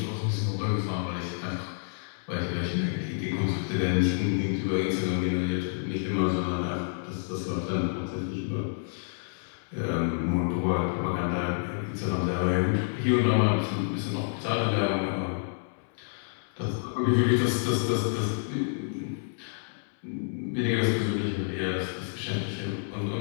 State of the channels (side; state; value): right; silent; digital silence